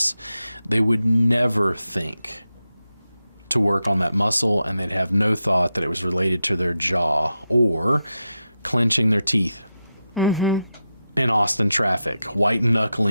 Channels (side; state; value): both; inverted; correlation -0.89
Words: They would never think to work on that muscle, and they'd have no thought that it was related to their jaw or clenching their teeth in Austin traffic, white